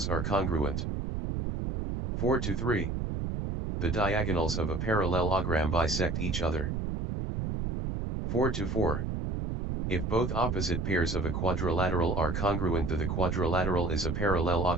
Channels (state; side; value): noise; right; rumble, 2 dB below the sound